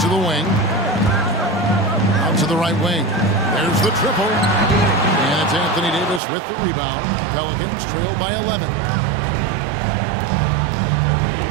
the wing. Out to the right wing. There's the triple. And it's Anthony Davis with the rebound. Pelicans trail by 11.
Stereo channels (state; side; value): drops out; left; at 6.2 s